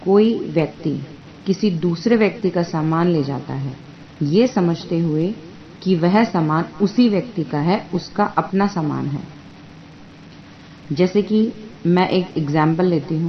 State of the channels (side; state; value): both; identical; correlation 1.00